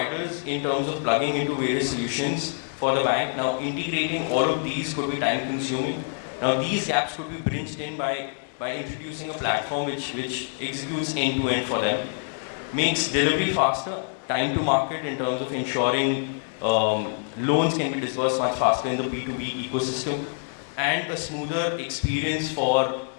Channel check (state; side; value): silent; right; digital silence